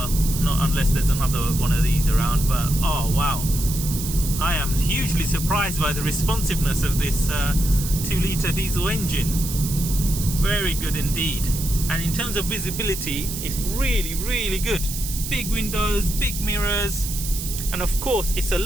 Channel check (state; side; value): noise; right; hiss, 7 dB below the sound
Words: not unless there's another one of these around, but oh wow, I am hugely surprised by the responsiveness of this 2-litre diesel engine. Very good indeed. And in terms of visibility, it's really good. Big windows, big mirrors, and of course it's a